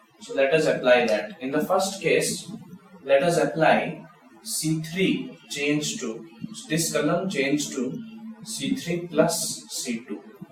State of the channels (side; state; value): both; identical; correlation 1.00